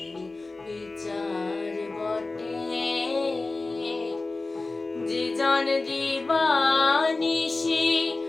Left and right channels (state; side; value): quieter; right; 3.4 dB